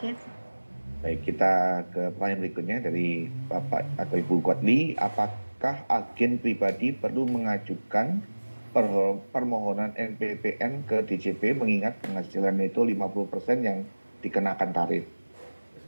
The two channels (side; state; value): both; inverted; correlation -1.00